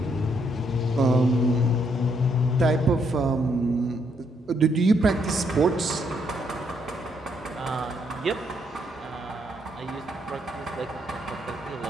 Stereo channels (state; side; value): normal; both; correlation 0.74